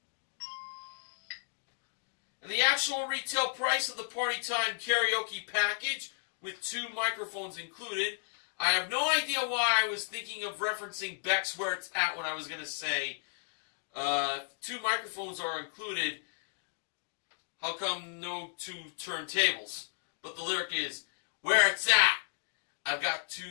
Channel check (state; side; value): silent; right; digital silence